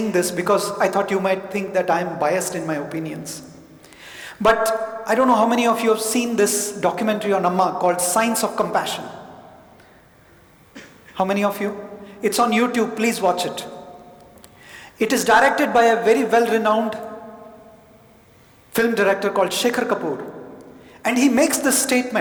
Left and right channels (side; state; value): both; identical; correlation 1.00